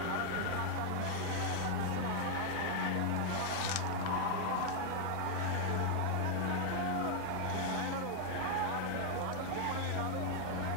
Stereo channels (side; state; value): both; different; correlation 0.00